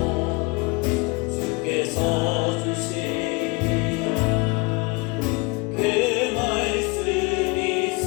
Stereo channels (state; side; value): quieter; right; 27.6 dB